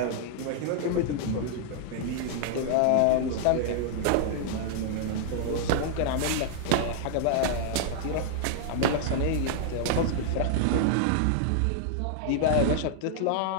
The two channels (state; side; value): different; both; correlation -0.01